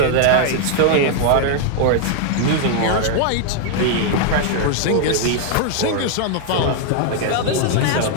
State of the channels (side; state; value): both; different; correlation 0.00